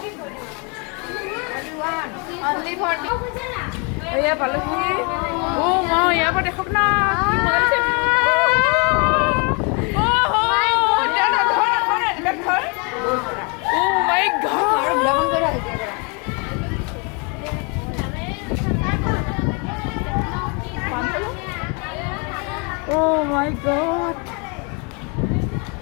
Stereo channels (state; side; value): quieter; right; 33.5 dB